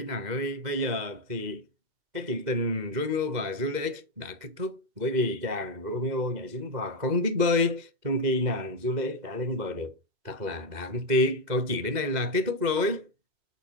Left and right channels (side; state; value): left; late; 2.1 ms